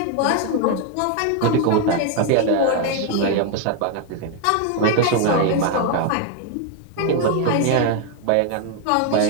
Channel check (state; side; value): different; both; correlation 0.01